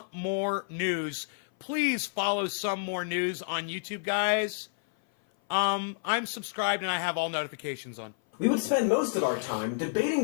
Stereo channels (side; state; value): right; silent; 56 dB below the other